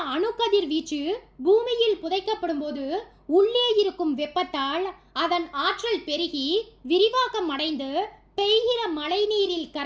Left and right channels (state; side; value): identical; both; correlation 1.00